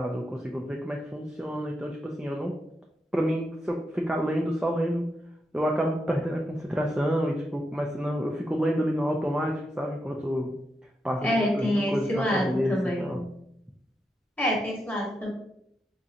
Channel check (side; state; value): both; normal; correlation 0.84